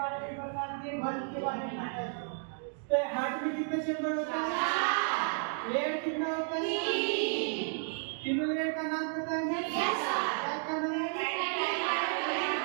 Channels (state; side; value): silent; left; 56 dB below the other